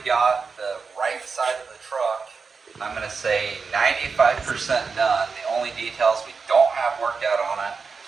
got the right side of the truck, I'm going to say 95% done. The only details we don't have worked out on it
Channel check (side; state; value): left; quieter; 5.0 dB